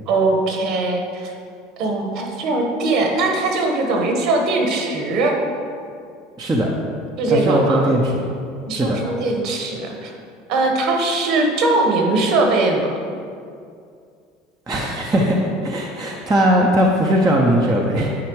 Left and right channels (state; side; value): normal; both; correlation 0.48